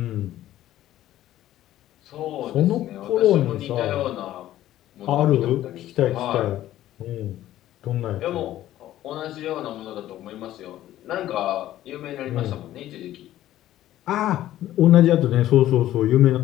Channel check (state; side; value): quieter; right; 13.5 dB